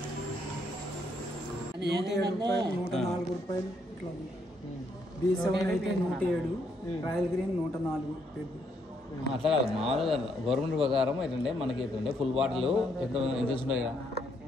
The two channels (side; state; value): both; normal; correlation 0.73